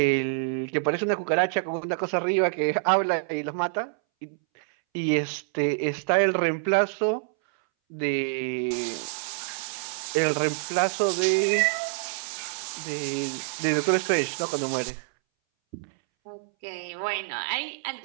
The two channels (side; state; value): left; silent; 60 dB below the other